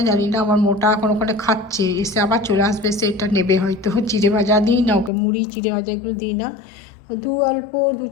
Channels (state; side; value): drops out; right; at 5.1 s